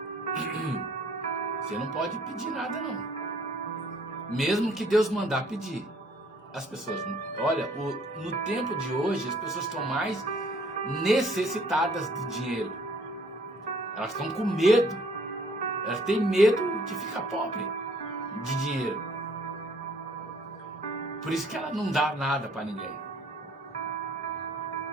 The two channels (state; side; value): normal; both; correlation 0.60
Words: você não pode pedir nada não, mesmo que Deus mandar pedir. As pessoas, olha, no tempo de hoje as pessoas estão mais necessitadas de dinheiro. Elas estão com medo. Elas têm medo de ficar pobre de dinheiro. Por isso que ela não dá nada para ninguém.